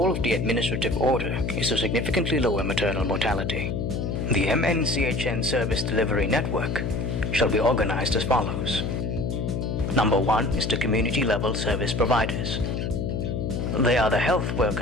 of the administrative order is to significantly lower maternal mortality. The MNCHN service delivery network shall be organized as follows. Number 1 is the community-level service providers. They are the health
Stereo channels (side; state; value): left; noise; hum, 2 dB below the sound